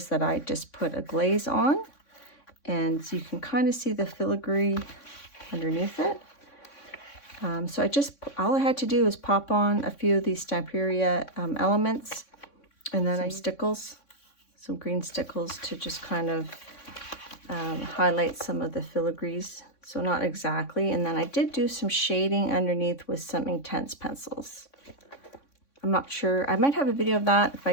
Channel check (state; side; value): late; right; 3.6 ms